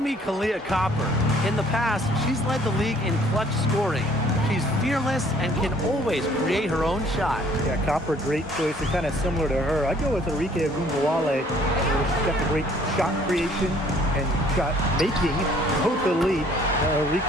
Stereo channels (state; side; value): normal; both; correlation 0.59